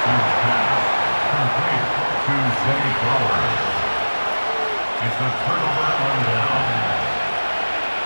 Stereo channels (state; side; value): inverted; both; correlation -1.00